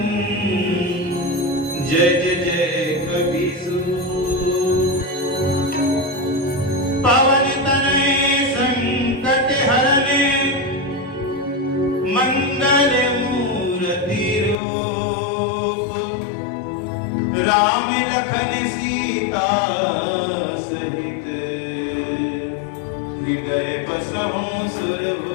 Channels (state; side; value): drops out; right; at 14.6 s